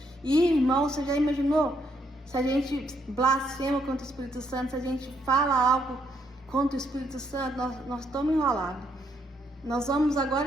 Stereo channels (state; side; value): normal; both; correlation 0.74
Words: E, irmão, você já imaginou? Se a gente blasfema contra o Espírito Santo, se a gente fala algo contra o Espírito Santo, nós estamos enrolados. Nós vamos